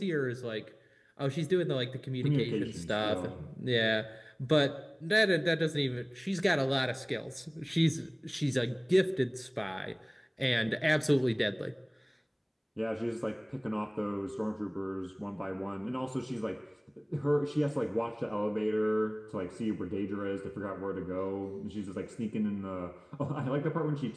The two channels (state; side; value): identical; both; correlation 1.00